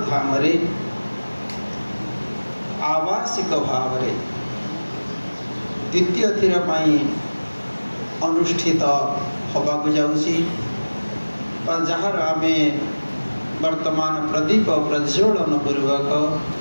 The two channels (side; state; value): both; inverted; correlation -1.00